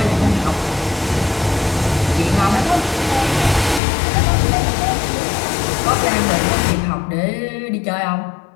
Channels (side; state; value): right; drops out; at 3.8 s